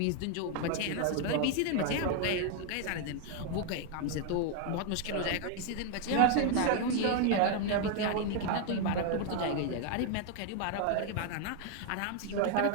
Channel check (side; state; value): both; different; correlation 0.00